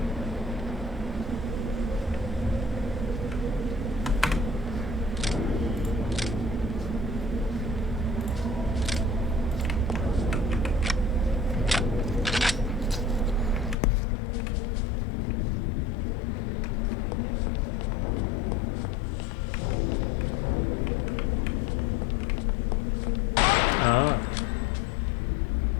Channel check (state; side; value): drops out; right; at 13.8 s